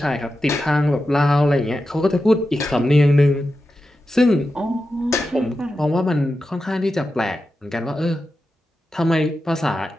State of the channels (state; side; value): normal; both; correlation 0.91